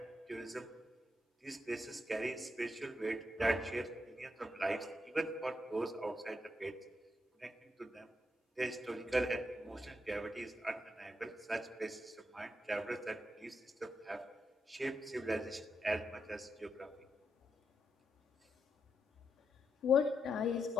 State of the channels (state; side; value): normal; both; correlation 0.83